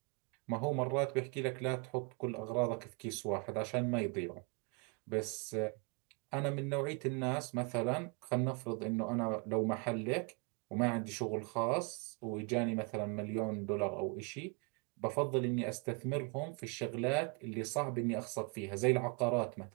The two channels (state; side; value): quieter; left; 32.0 dB